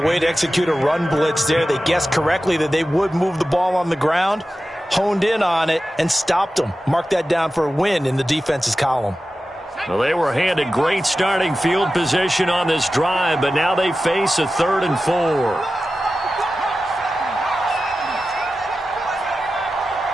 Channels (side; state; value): both; normal; correlation 0.94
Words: way to execute a run blitz there. They guessed correctly that they would move the ball on the ground, honed in on it, and stopped them. Mark that down for a win in the defense's column. Well, they were handed great starting field position on this drive, but now they face a 3rd and 4.